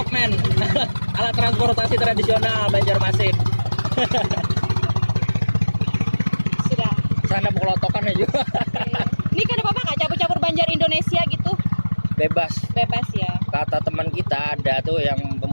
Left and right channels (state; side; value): inverted; both; correlation -1.00